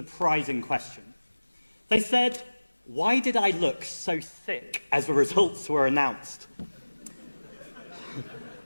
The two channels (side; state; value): both; inverted; correlation -1.00